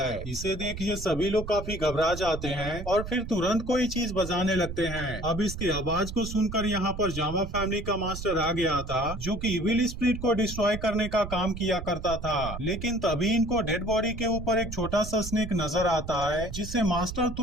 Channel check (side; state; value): right; noise; rumble, 9 dB below the sound